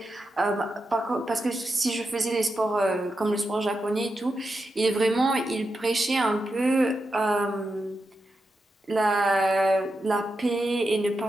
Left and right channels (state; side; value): normal; both; correlation 0.88